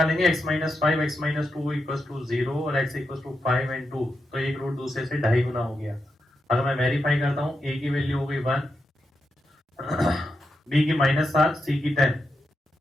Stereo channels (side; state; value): both; normal; correlation 0.86